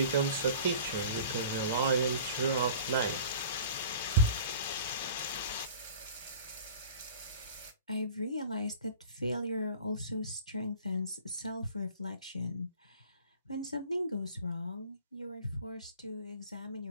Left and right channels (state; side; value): inverted; both; correlation -0.43